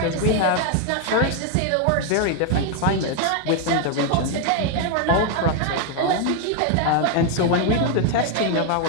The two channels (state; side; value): different; both; correlation 0.01